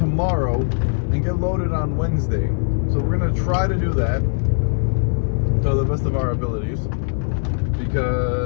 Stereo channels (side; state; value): right; silent; 62 dB below the other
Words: and get loaded on Wednesday. So we're gonna try to do that to the best of our abilities.